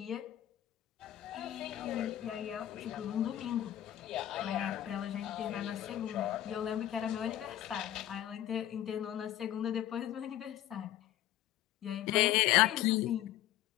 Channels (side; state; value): right; quieter; 12.7 dB